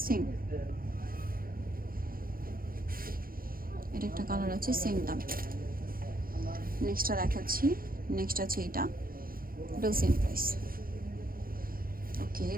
সেম, এটা একটা কালার আছে, সেম দাম। নেক্সটটা দেখাচ্ছি। নেক্সট আছে এটাও সেম প্রাইস। ওকে,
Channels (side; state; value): left; late; 0.42 ms